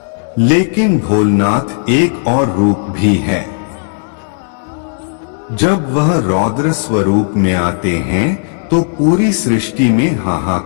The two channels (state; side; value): silent; right; digital silence